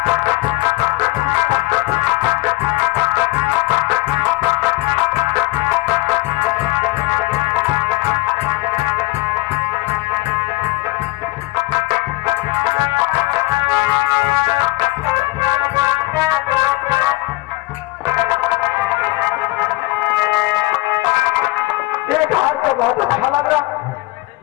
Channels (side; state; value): right; quieter; 20.1 dB